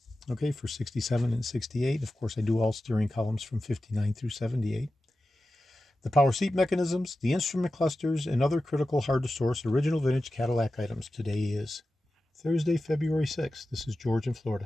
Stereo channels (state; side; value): normal; both; correlation 0.93